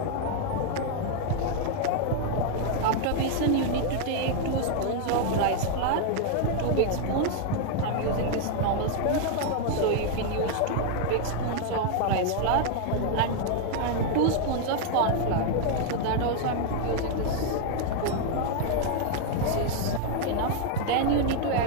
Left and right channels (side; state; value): both; different; correlation 0.00